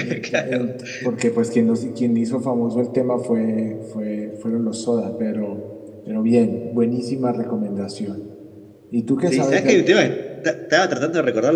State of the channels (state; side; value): identical; both; correlation 1.00